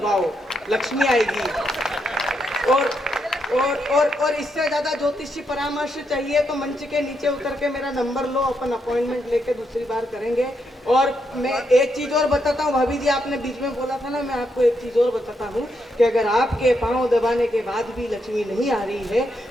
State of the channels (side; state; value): both; normal; correlation 0.80